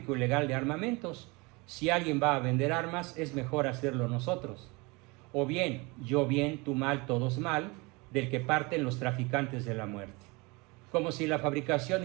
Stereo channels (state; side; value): quieter; left; 26.2 dB